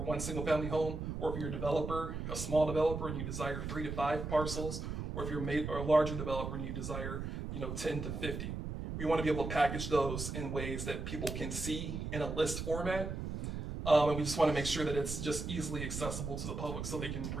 one single family home, or if you're a developer, a small developer, and you desire 3 to 5 parcels, or if you're a larger developer and you desire 10 to 50. We want to be able to package those in ways that people can see in a list format. And we just want to make sure that it's just easily accessible to the public so they can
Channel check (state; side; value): noise; right; rumble, 5 dB below the sound